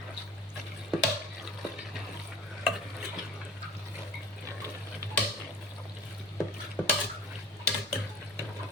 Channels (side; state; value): both; normal; correlation 0.42